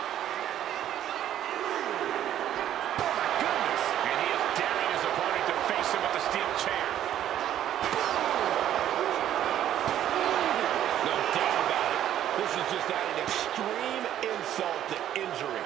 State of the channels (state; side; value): quieter; left; 11.4 dB